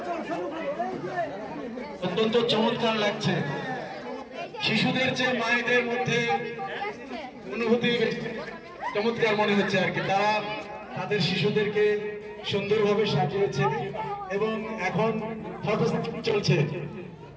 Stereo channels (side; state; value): both; identical; correlation 1.00